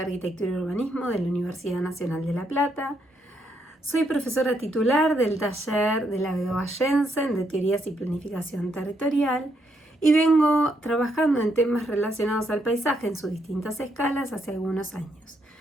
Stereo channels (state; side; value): normal; both; correlation 0.76